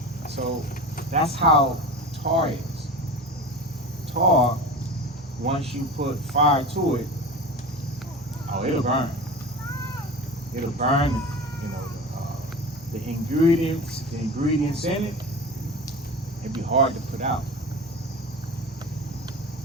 So that's how tar is. Tar, once you put fire to it, oh, it'll burn. It'll burn, you know, the ingredients in it. It'd be hard to put out.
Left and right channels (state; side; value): normal; both; correlation 0.31